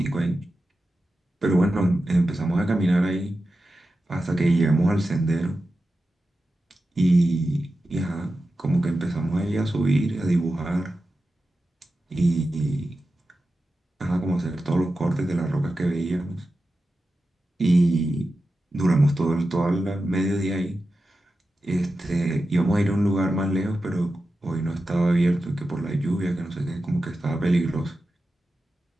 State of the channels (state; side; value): normal; both; correlation 0.92